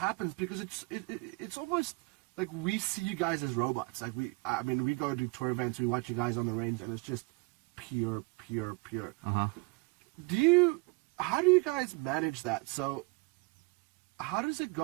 because it's almost like we see you guys as robots. Like we go to tour events, we watch you guys on the range, and it's just pure. Uh-huh. How do you guys manage that? So how does it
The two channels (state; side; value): quieter; left; 27.4 dB